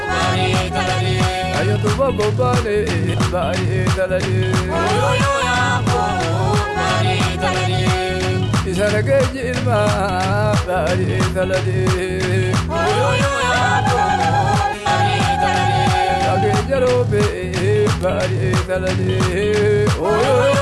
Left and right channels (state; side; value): identical; both; correlation 1.00